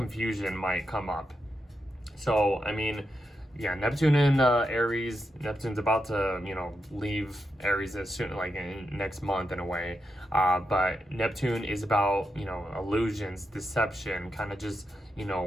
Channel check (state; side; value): normal; both; correlation 0.85